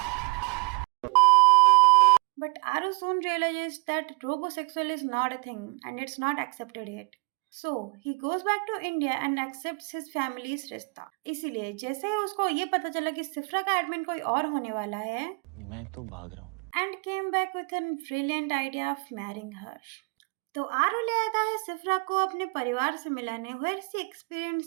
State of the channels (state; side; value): quieter; left; 33.2 dB